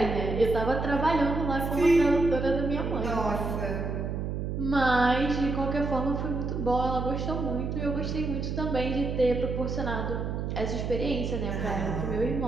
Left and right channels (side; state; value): right; noise; hum, 3 dB below the sound